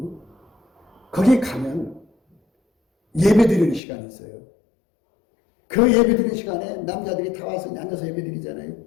거기 가면 예배 드리는 시간이 있어요. 그 예배 드리는 시간에 남자들이 다 와서 앉아서 예배 드리잖아요.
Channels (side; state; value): right; drops out; at 3.8 s